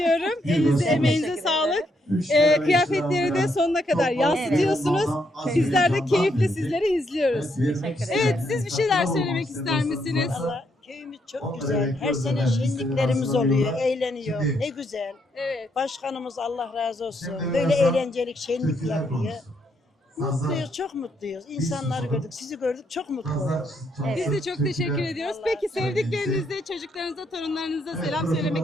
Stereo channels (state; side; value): normal; both; correlation 0.76